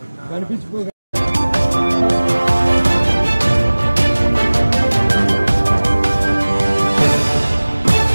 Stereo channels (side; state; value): both; inverted; correlation -1.00